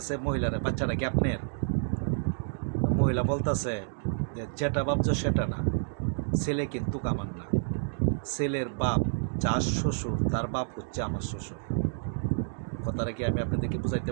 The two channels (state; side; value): silent; left; digital silence